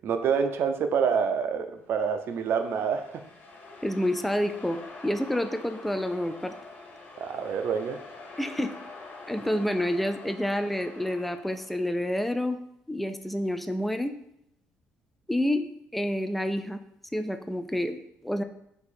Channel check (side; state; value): both; normal; correlation 0.81